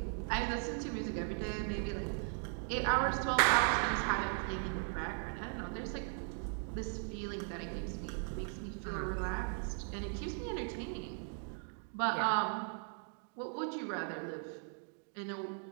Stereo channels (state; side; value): silent; left; 52 dB below the other